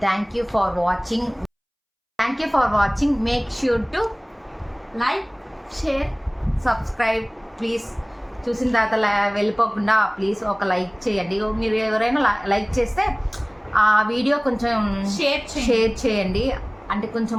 Thank you for watching. Make sure to like, share, subscribe please. చూసిన తర్వాత వెళ్ళిపోకుండా ప్లీజ్ ఒక లైక్ చేయండి. మీరు ఎవరైనా లైక్ చేస్తే ఆ వీడియో కొంచెం షేర్ చేయండి. అంటే కొంచెం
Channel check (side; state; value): both; identical; correlation 1.00